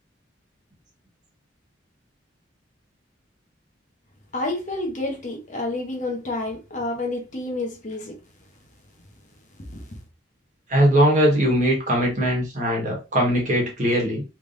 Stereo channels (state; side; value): normal; both; correlation 0.49